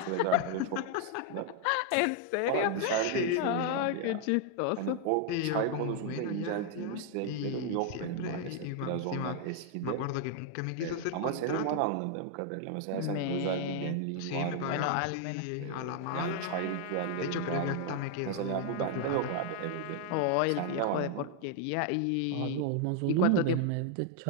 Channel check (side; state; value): both; different; correlation 0.00